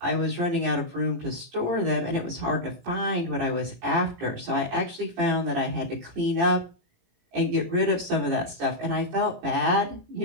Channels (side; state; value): left; late; 17 ms